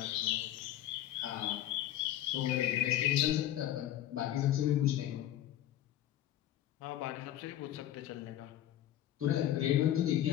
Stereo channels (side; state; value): right; quieter; 12.5 dB